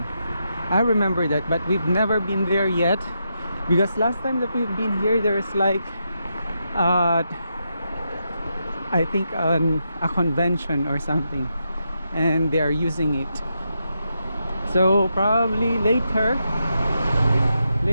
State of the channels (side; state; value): both; inverted; correlation -0.84